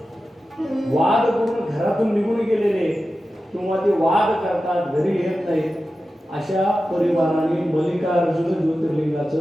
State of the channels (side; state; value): both; normal; correlation 0.93